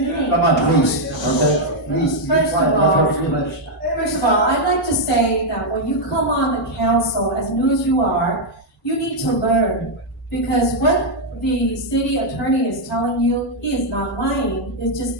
Come on, please, okay? Please, be First of quiet, all- let her finish. First of all, I'd like to say that when you come on the council, as new as you are, you need to learn. Because what the city attorney is telling you, he is not lying, it's just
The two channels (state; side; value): normal; both; correlation -0.01